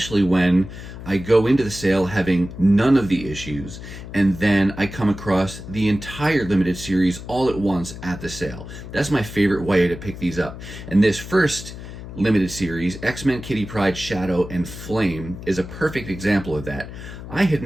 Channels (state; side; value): noise; left; hum, 12 dB below the sound